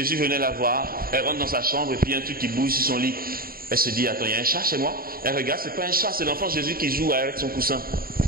venait la voir, elle rentre dans sa chambre et puis il y a un truc qui bouge sur son lit. Elle se dit, attends, il y a un chat chez moi? Elle regarde, c'est pas un chat, c'est l'enfant Jésus qui joue avec son coussin.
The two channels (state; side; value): late; left; 0.43 ms